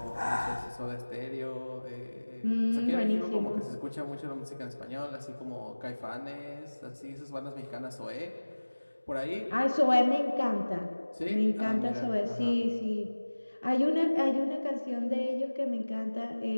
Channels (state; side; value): inverted; both; correlation -1.00